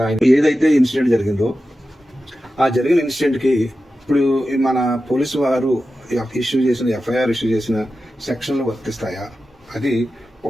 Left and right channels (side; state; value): both; normal; correlation 0.92